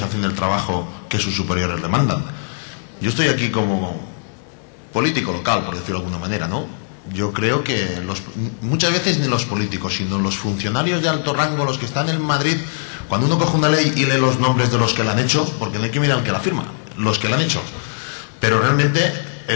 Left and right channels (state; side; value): silent; right; digital silence